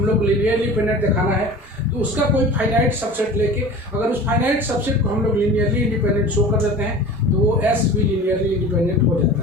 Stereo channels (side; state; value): both; normal; correlation 0.38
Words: लोग लीनियरली इंडिपेंडेंट दिखाना है तो उसका कोई फाइनाइट सबसेट लेके अगर उस फाइनाइट सबसेट को हम लोग लीनियरली इंडिपेंडेंट शो कर देते हैं तो वो एस भी लीनियरली इंडिपेंडेंट हो जाता